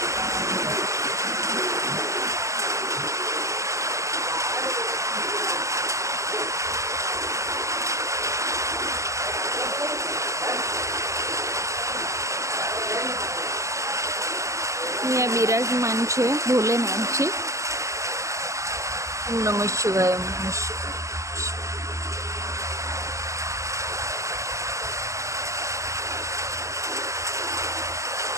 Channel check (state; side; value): late; left; 0.15 ms